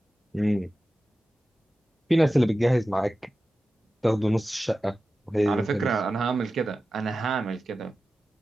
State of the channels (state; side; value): normal; both; correlation 0.94